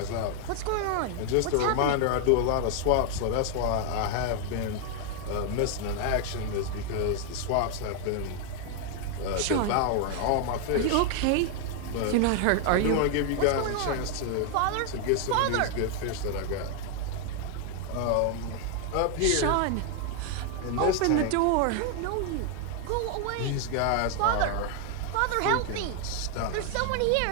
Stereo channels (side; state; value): both; different; correlation 0.00